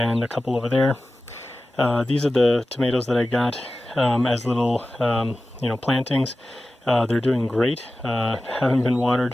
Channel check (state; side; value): normal; both; correlation 0.95